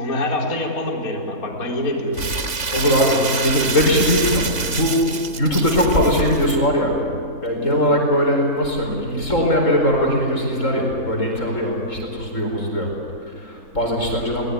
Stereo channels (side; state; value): right; late; 3.5 ms